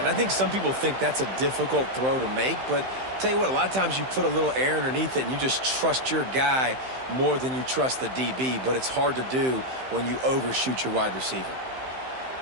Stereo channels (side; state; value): left; late; 15 ms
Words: I think some people think that's a difficult throw to make, but tell you what, a lot of times you put a little air underneath it and you just trust your guy more than you trust the DB, but it's hard to do when you overshoot your wide receiver.